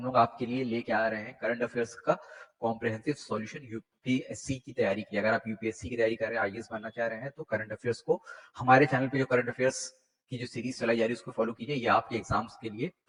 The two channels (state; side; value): identical; both; correlation 1.00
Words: लोग आपके लिए लेके आ रहे हैं करंट अफेयर्स का कॉम्प्रिहेंसिव सॉल्यूशन यूपीएससी की तैयारी की। अगर आप यूपीएससी की तैयारी कर रहे हैं, आईएएस बनना चाह रहे हैं, तो करंट अफेयर्स को हमारे चैनल पे जो करंट अफेयर्स की जो सीरीज चलाई जा रही है उसको फॉलो कीजिए। ये आपके एग्जाम्स के लिए,